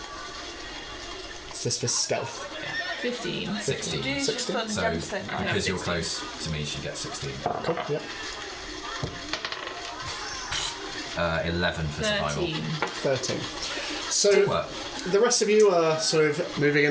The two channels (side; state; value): both; identical; correlation 1.00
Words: Is this for stealth? 15. 16. Do you just 16? put So, 10%? because you're close to me, she gets 16. Cool, yeah. 11 for survival. 13. 13. So, What? the rest of you are sort of moving,